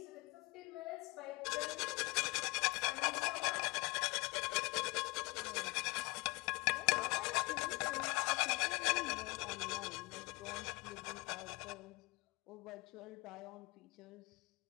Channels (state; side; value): quieter; right; 24.5 dB